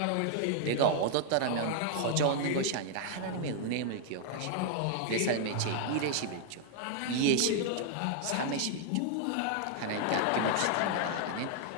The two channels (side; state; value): both; different; correlation 0.00